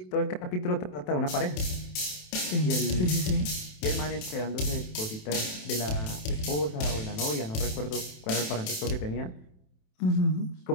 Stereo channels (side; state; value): right; late; 27 ms